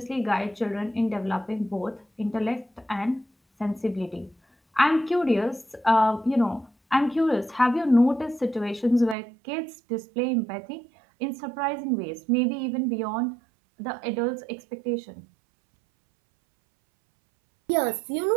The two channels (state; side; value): drops out; left; at 9.2 s